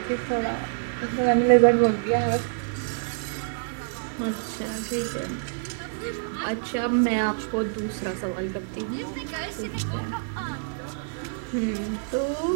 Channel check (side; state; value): left; silent; digital silence